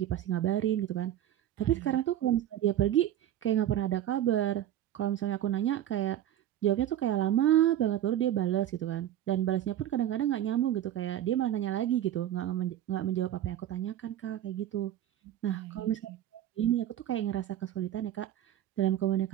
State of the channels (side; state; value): left; quieter; 11.6 dB